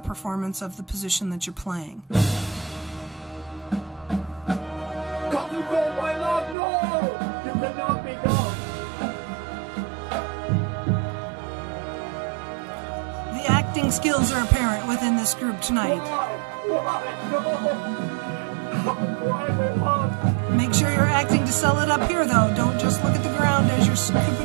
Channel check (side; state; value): left; drops out; at 6.6 s